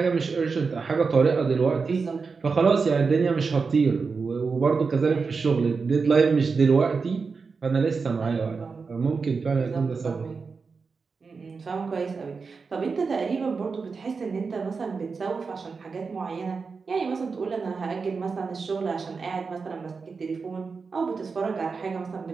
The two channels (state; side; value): quieter; left; 4.9 dB